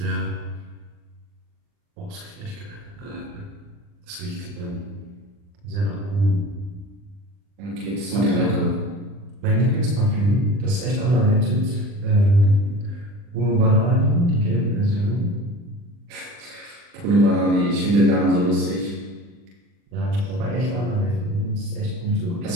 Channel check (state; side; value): late; left; 40 ms